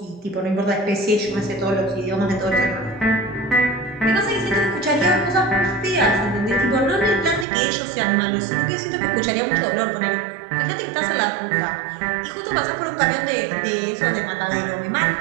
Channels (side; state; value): left; drops out; at 7.5 s